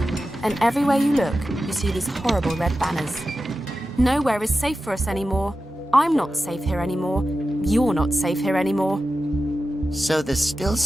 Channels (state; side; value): normal; both; correlation 0.92